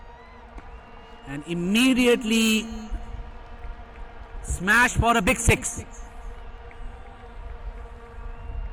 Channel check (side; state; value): both; identical; correlation 1.00